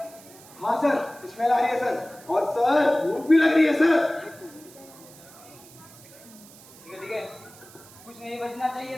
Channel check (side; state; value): right; noise; hiss, 21 dB below the sound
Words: हाँ सर, स्मेल आ रही है सर। और सर भूख भी लग रही है सर। ठीक है, कुछ नहीं बचना चाहिए